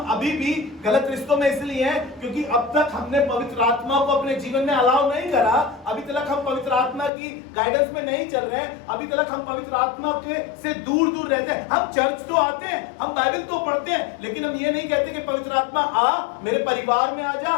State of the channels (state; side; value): drops out; right; at 7.1 s